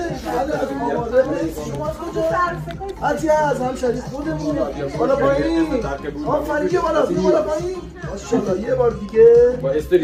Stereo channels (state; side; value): identical; both; correlation 1.00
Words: از آماده شما از کجا؟ عطیه از همشهری خودمون. بالا پایین آفرین بیا بالا پایین ماشاءالله. یه بار دیگه با